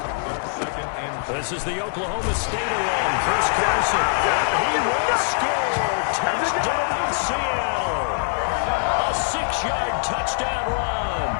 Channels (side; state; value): right; silent; 63 dB below the other